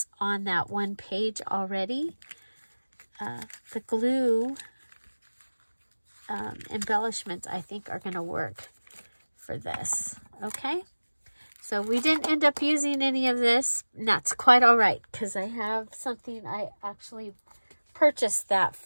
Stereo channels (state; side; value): inverted; both; correlation -1.00